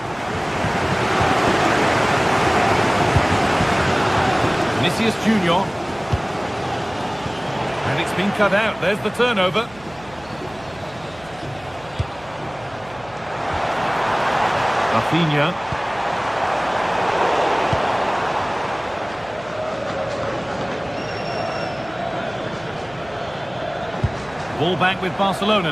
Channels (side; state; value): right; noise; hum, 23 dB below the sound